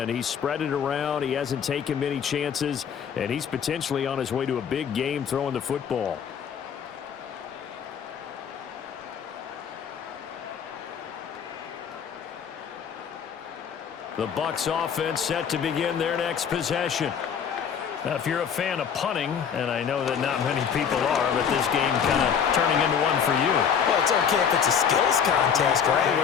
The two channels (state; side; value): quieter; right; 7.5 dB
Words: He's spread it around. He hasn't taken many chances. And he's potentially on his way to a big game throwing the football. The Bucs offense set to begin their next possession. Now, if you're a fan of punting, and I know that not many people are, but this game kind of turning into one for you. Well, it's okay if it's a skills contest, right?